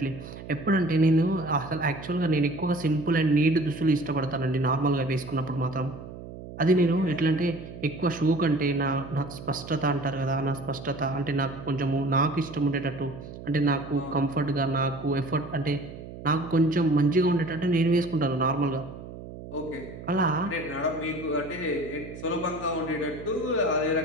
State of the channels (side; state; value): right; noise; hum, 13 dB below the sound